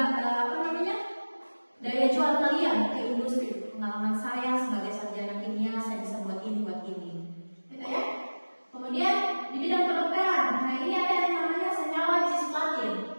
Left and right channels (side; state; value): both; inverted; correlation -1.00